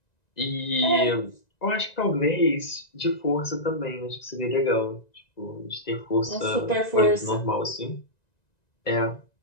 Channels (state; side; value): late; right; 1.9 ms